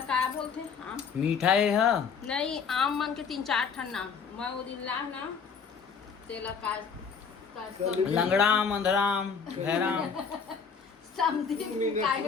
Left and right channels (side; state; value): right; quieter; 6.1 dB